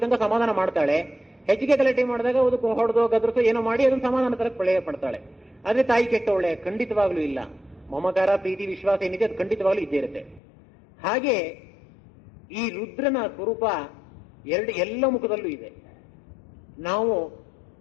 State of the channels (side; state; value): right; drops out; at 10.4 s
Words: ತನಕ ಸಮಾಧಾನ ಮಾಡ್ತಾಳೆ. ಹೆಚ್ಚಿಗೆ ಗಲಾಟೆ ಮಾಡಿದಾಗ ಅದಕ್ಕೆ ಹೊಡೆದೋ ಗದ್ರಸೋ ಏನೋ ಮಾಡಿ ಅದನ್ನು ಸಮಾಧಾನ ತರ ಪ್ರಳಯ ಪಡ್ತಾಳೆ. ಆದ್ರೆ ತಾಯಿ ಕೆಟ್ಟವಳೆ ಖಂಡಿತವಾಗ್ಲೂ ಇಲ್ಲ. ಮಮಕಾರ, ಪ್ರೀತಿ, ವಿಶ್ವಾಸ ಏನಿದೆ ಅದು ಖಂಡಿತವಾಗ್ಲೂ ಇದ್ದೇ ಇರುತ್ತೆ. ಹಾಗೆ ಈ ರುದ್ರನ ಸ್ವರೂಪ ಎಲ್ಲ ಮುಖದಲ್ಲೂ ಇದೆ. ನಾವು